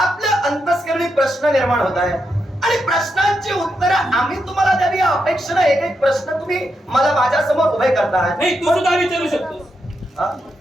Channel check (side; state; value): both; normal; correlation 0.83